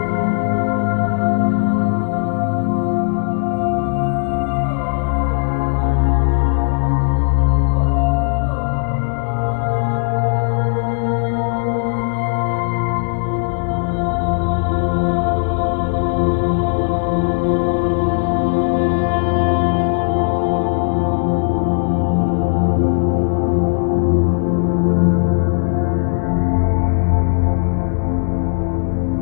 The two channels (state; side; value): silent; right; digital silence